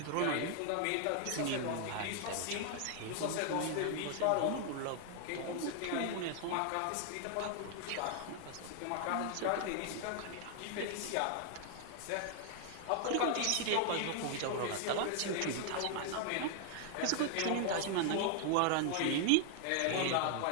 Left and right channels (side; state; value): both; different; correlation 0.00